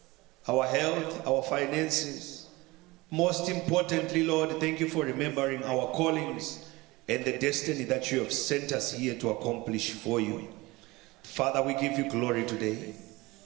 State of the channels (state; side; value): quieter; left; 21.8 dB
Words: our health, our finances. Most importantly, Lord, thank you for remembering our callings and the destiny that you have sent us here to accomplish for you. Father, we give you glory today.